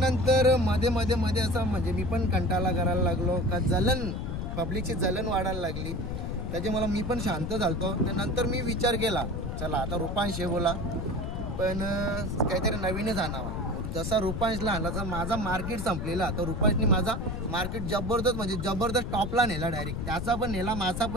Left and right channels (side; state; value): left; noise; rumble, 4 dB below the sound